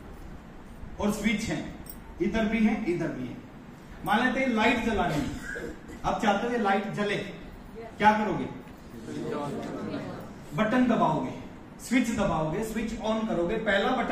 और स्विच है, इधर भी है इधर भी है। मान लेते हैं लाइट जलानी है, आप चाहते हो ये लाइट जले, क्या करोगे? बटन दबाओगे, स्विच दबाओगे, स्विच ऑन करोगे। पहला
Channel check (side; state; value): both; identical; correlation 1.00